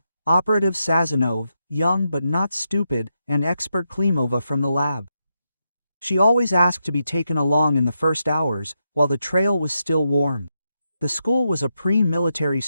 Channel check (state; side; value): inverted; both; correlation -0.84